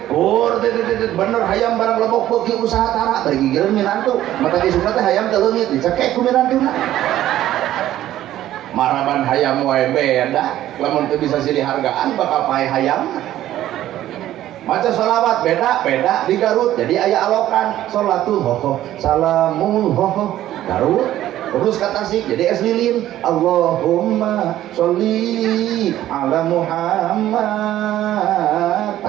bener hayam barang lebok beuki usaha tara bari gigireun nyenan tuh mata kisuna teh hayam teh leungit dicekek ku minantuna. Maraban hayam wae beda, lamun teu bisa silih hargaan bakal pae hayam. Maca sholawat beda di Garut jadi aya alokan sholatul hoho salamul hoho Garut. Terus ke Tasik jadi es lilin Allahumma sholli ala Muhammad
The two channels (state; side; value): quieter; left; 13.3 dB